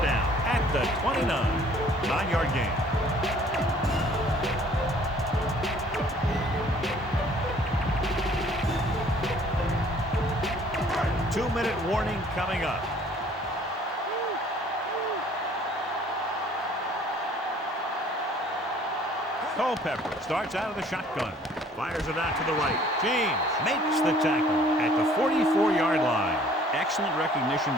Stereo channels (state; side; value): normal; both; correlation 0.56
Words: down at the 29. 9-yard gain. Two-minute warning coming up. Culpepper starts out of the shotgun. Fires it out to the right. James makes the tackle at the 44-yard line. Excellent recognition